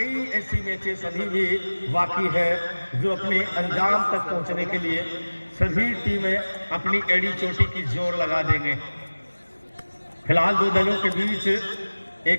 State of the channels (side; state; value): both; inverted; correlation -1.00